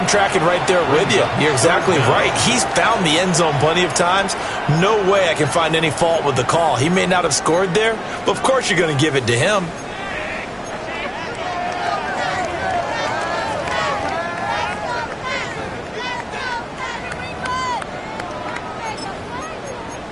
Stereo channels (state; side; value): identical; both; correlation 1.00